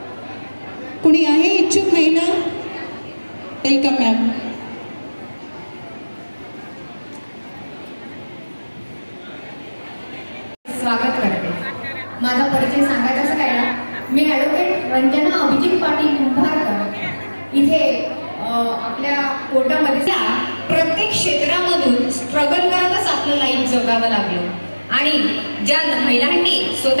कुणी आहे इच्छुक महिला? Welcome ma'am. स्वागत करते। माझा परिचय सांगायचा काय ना, मी ॲडव्होकेट रंजना अभिजित पाटील कुंभारकर इथे आपल्या कोर्टामध्ये प्रत्येक क्षेत्रामधून स्ट्रगल करतच आपलं लाईफ जगावं लागलं आणि ज्या महिलांनी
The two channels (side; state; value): both; inverted; correlation -1.00